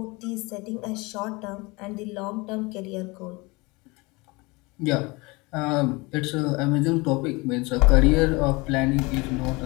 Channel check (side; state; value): right; quieter; 25.1 dB